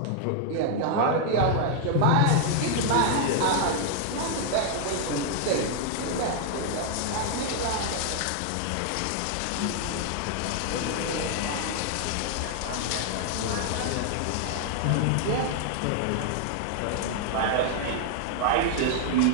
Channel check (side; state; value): both; different; correlation 0.00